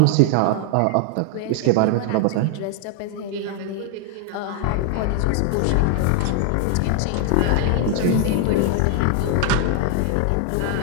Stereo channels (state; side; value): different; both; correlation 0.00